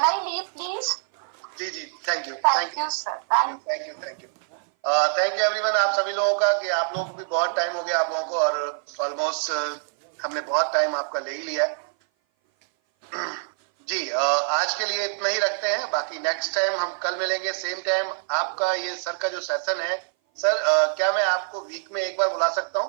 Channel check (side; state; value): left; silent; 57 dB below the other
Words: I leave please? जी जी, thank you thank you sir, thank you everyone. आप सभी लोगों का, कि आप लोगों को भी बहुत टाइम हो गया आप लोगों को, और ऑलमोस्ट हमने बहुत टाइम आपका ले ही लिया है जी। आज के लिए इतना ही रखते हैं, बाकी नेक्स्ट टाइम हम कल मिलेंगे सेम टाइम। आपका ये सर का जो सेशन है सर, क्या मैं आपको वीक में एक बार बुला सकता